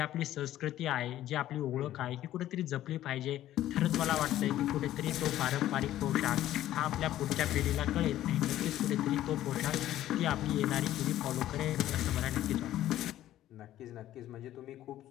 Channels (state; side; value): quieter; right; 13.3 dB